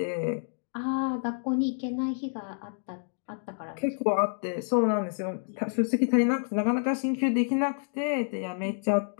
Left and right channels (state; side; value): silent; right; digital silence